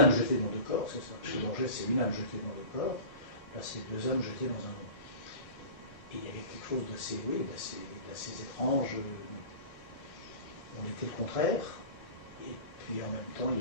jetée dans deux corps, c'est ça. Chez Borges, c'est une âme jetée dans deux corps. Là, c'est deux âmes jetées dans un nom. Et il y avait quelque chose d'assez étrange. On était le contraire. Et puis en même temps, il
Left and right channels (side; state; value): right; late; 1.6 ms